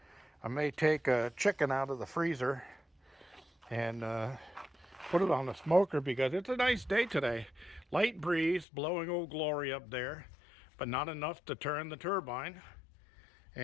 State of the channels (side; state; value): right; drops out; at 8.7 s